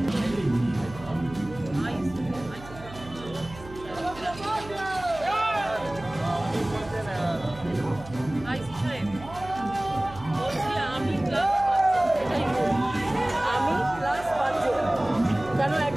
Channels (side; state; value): right; noise; hum, 16 dB below the sound